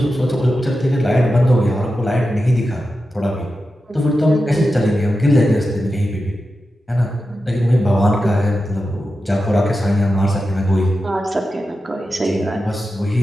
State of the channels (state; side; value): normal; both; correlation 0.91